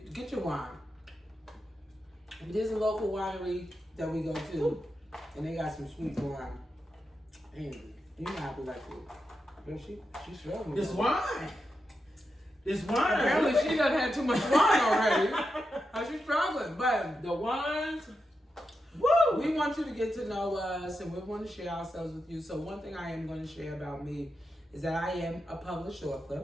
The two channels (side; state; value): both; normal; correlation 0.87